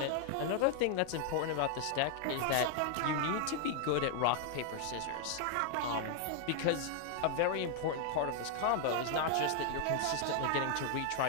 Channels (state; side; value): different; both; correlation 0.00